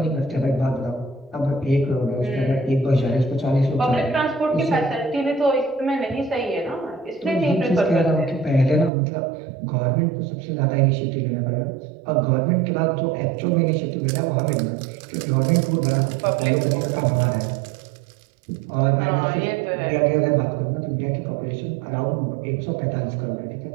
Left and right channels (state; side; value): drops out; left; at 8.9 s